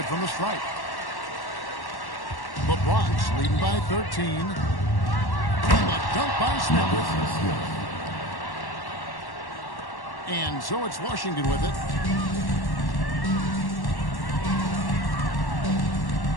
from the strike. The Bronx leading by 13. And the dunk by Smith. And so it's Washington with it.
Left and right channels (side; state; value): right; late; 1.1 ms